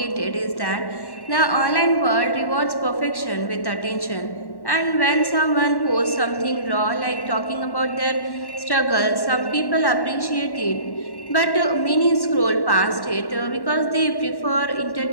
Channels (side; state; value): right; late; 1.1 ms